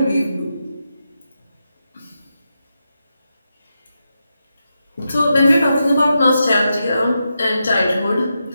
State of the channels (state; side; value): inverted; both; correlation -0.87